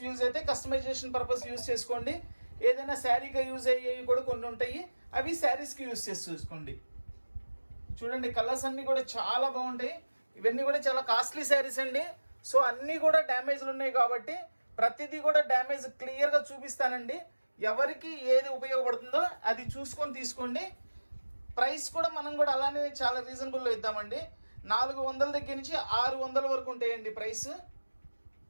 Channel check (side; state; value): both; inverted; correlation -1.00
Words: యూజ్ అయితే కస్టమైజేషన్ పర్పస్ యూజ్ చేసుకోండి. ఏదైనా శారీగా యూజ్ అయ్యేవి కూడా కొన్ని ఉంటాయి, అవి శారీస్కి యూజ్ చేసి చూసుకోండి. చూడండి, కలర్స్ అన్నీ కూడా చాలా బాగుంటాయి. ఇవన్నీ కూడా చాలా కాస్ట్లీ శారీస్ అండి. సో అన్నీ కూడా డ్యామేజ్లు ఉన్నాయి కాబట్టి ప్రతిదీ కూడా డ్యామేజ్ క్లియర్గా చూపిస్తానండి. ఎవరికి ఏది ఉపయోగపడుతుందో అది చూసుకొని తీసుకోండి. ప్రైస్ కూడా మనం కూడా అలానే చాలా రీజనబుల్లో ఇద్దామండి. 400 దగ్గర నుంచి 600 వరకు ఉంటాయండి ప్రైస్.